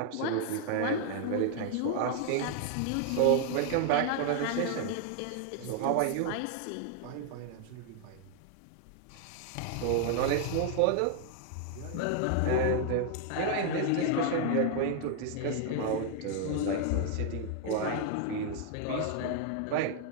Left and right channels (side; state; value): both; different; correlation 0.00